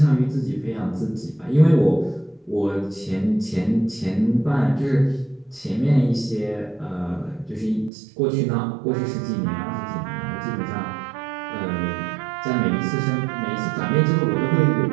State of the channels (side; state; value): left; drops out; at 7.9 s